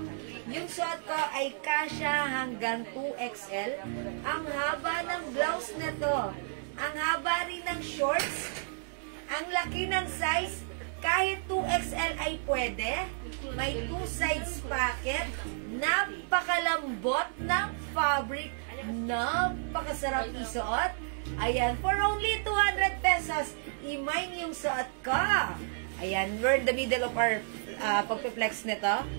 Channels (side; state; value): left; silent; digital silence